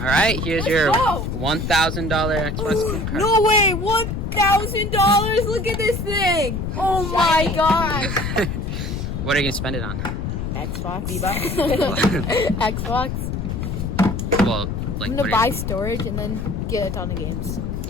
right, here's Let's your go. $1,000 Xbox gift card. No way! $1,000! Look at this thing! Oh my gosh! What are you gonna spend it on? Xbox. V-Bucks. Xbox. Well, like I'm what gonna buy storage and then get a ton of games.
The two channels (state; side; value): noise; left; rumble, 3 dB below the sound